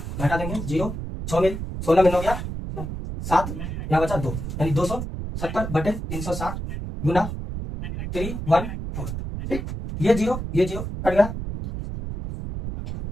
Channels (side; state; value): right; noise; rumble, 6 dB below the sound